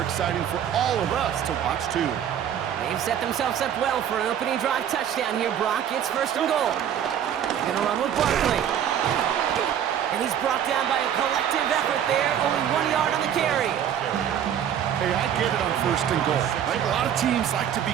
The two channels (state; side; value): quieter; left; 9.4 dB